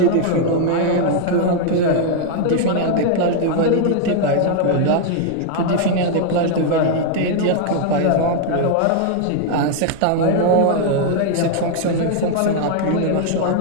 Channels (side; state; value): both; different; correlation 0.00